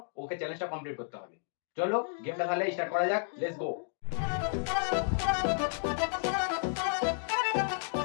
ওকে চ্যালেঞ্জটা কমপ্লিট করতে হবে। চলো গেমটা তাহলে স্টার্ট করা যাক, লেটস গো।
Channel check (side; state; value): right; silent; digital silence